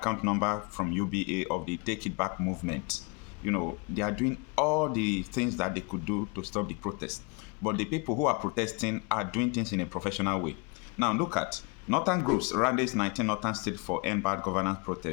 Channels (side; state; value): right; quieter; 31.5 dB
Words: number from UBA of the Take It Back movement. They are doing all the things that they could do to stop the protest. But the people who are protesting are doing things in a professional way. Now look at Northern groups, Rallies 19 Northern State for End Bad Governance